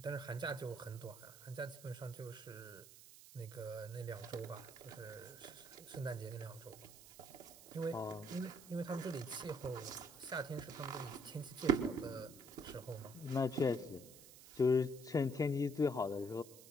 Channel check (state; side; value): noise; right; hiss, 18 dB below the sound